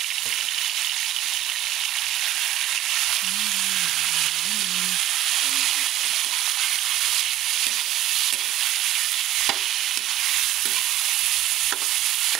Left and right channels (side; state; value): left; quieter; 13.4 dB